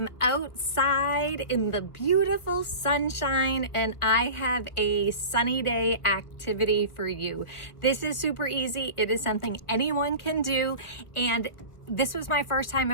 outside in the beautiful sunshine and I have a sunny day activity for you. This is super easy. It is something anyone can do, and this was my first time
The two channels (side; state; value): right; late; 1.4 ms